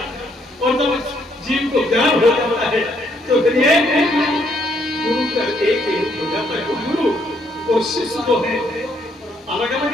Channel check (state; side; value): normal; both; correlation 0.70